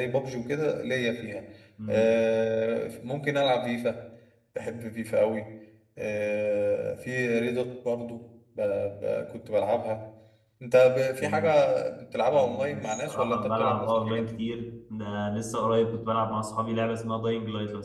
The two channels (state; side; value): identical; both; correlation 1.00